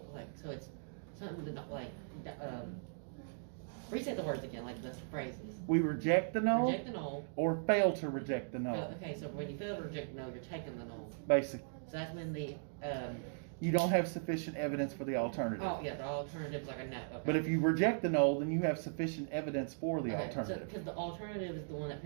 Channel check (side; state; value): left; silent; digital silence